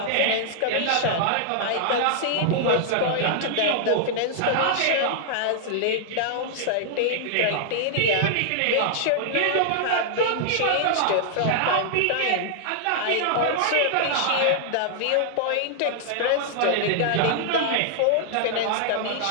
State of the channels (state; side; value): different; both; correlation -0.01